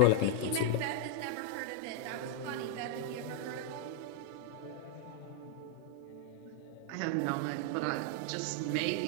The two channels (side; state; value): both; different; correlation 0.00